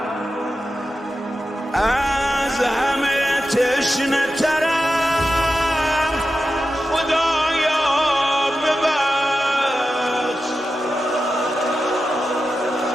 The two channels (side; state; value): both; normal; correlation 0.91